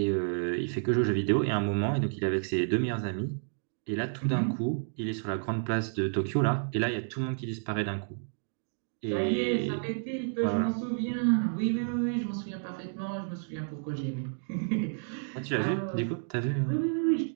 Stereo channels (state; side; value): silent; left; digital silence